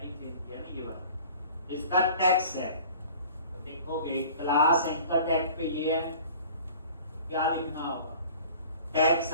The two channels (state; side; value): inverted; both; correlation -0.45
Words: दे दिया ना, ये बात इसका टेक्स्ट है, तो देखोगे क्लास एंकर टैग पे ये है, तो क्या लिखना होगा, टेक्स्ट